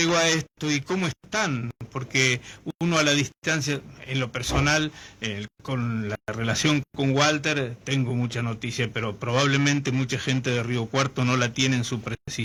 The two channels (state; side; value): identical; both; correlation 1.00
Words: a esto y cómo están? Porque uno a la distancia, en lo personal, con la relación con Walter, tengo mucha noticia, pero probablemente mucha gente de Río Cuarto no la tiene en su